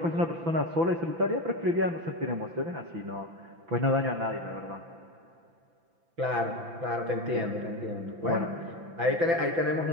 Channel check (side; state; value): left; late; 6.0 ms